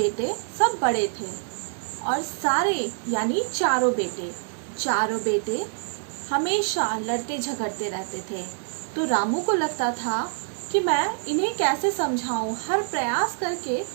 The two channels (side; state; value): left; silent; digital silence